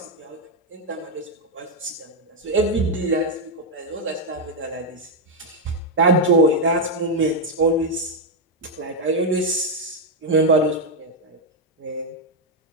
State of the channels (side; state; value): both; normal; correlation 0.01